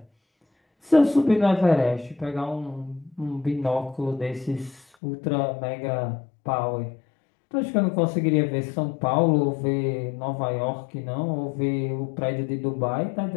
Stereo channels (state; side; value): drops out; right; at 4.9 s